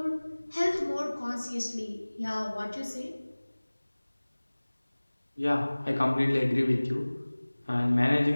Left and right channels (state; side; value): inverted; both; correlation -1.00